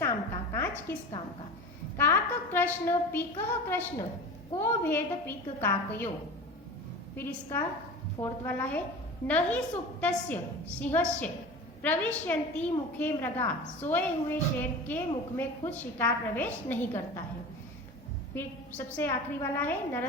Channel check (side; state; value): both; normal; correlation 0.33